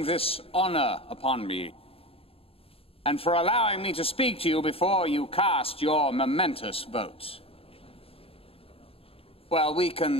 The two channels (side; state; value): right; late; 0.27 ms